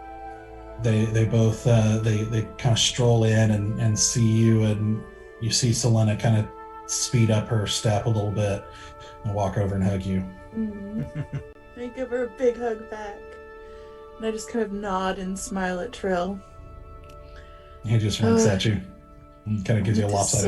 They both they kind of stroll in and see you, and you see Sylenna kind of speed up her step a little bit and walk over and hug you. I give her a big hug back, and I just kind of nod and smile at Trill. He just winks at you and kind of gives you a It is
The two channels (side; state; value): both; identical; correlation 1.00